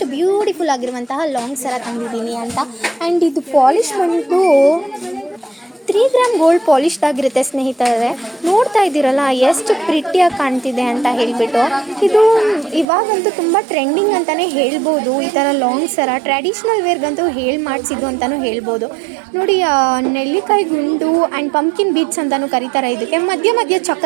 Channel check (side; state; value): left; drops out; at 12.9 s